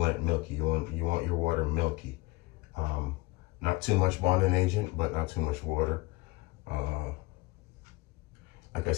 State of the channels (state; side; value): quieter; right; 22.3 dB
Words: it milky. You want your water milky. Not too much bonding agent, but not too much water. Like I